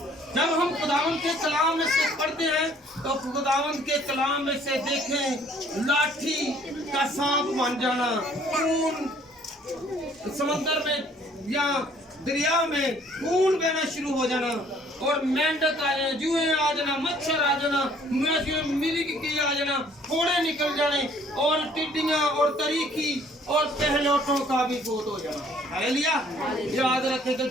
जब हम खुदावंद के कलाम में से पढ़ते हैं तो खुदावंद के कलाम में से देखें लाठी का सांप बन जाना, खून समंदर में या दरिया में खून बहना शुरू हो जाना, और मेंढक आ जाना, जुए आ जाना, मच्छर आ जाना, मिर्गी आ जाना, फोड़े निकल जाने, और टिड्डियां और तरीकी और पहलौठों का भी बहुत हो जाना। हालेलुया। याद रखें कि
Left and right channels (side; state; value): both; normal; correlation 0.59